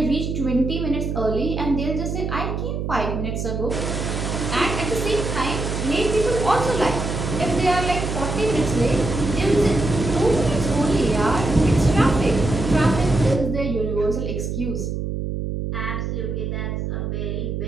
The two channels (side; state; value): right; noise; hum, 3 dB below the sound